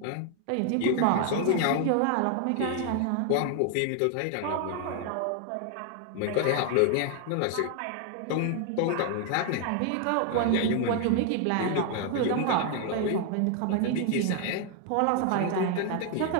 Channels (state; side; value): different; both; correlation 0.00